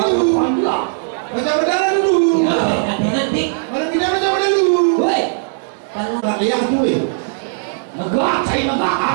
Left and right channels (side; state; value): left; silent; digital silence